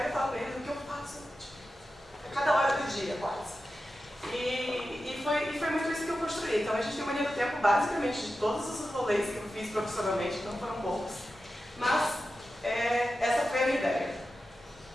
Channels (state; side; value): normal; both; correlation 0.92